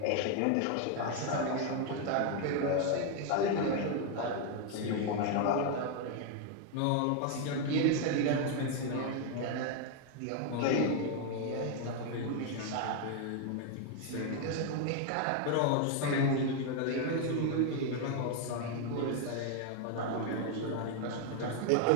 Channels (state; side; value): different; both; correlation 0.01